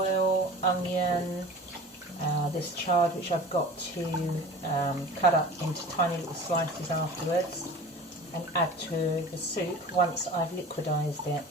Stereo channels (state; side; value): normal; both; correlation 0.39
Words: onion, this chard which I've got to cut up into tiny little slices afterwards and add to the soup once I've liquidised it.